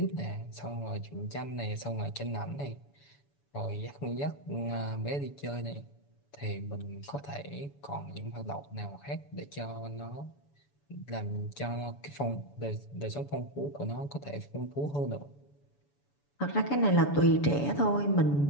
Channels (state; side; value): late; right; 7.0 ms